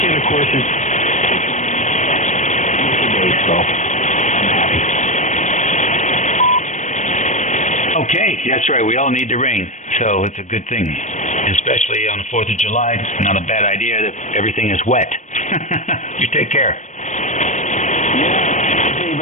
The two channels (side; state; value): right; late; 0.35 ms